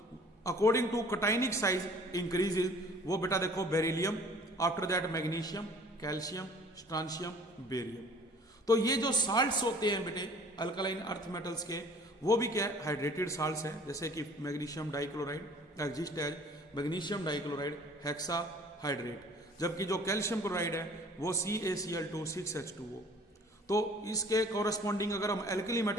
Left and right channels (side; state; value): both; normal; correlation 0.51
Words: according to cationic size increases, वो बेटा देखो beryllium, after that magnesium, calcium, strontium, barium. तो ये जो साल्ट्स होते हैं बेटे अल्कलाइन अर्थ मेटल्स के वो भी क्या है, हाइड्रेटेड साल्ट्स हैं, जैसे कि magnesium dichloride exist as magnesium dichloride hexahydrate, जबकि जो कैल्शियम क्लोराइड है वो CaCl2 तो इसके कोरस्पॉन्डिंग अगर हम एल्कली